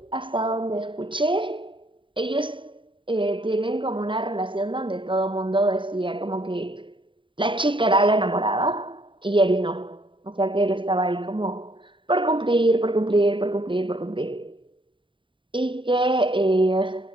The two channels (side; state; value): left; late; 0.24 ms